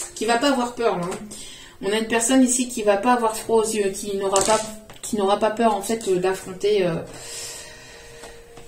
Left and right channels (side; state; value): both; identical; correlation 1.00